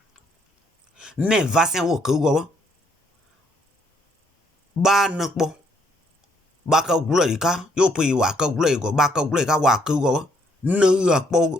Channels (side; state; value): both; normal; correlation 0.69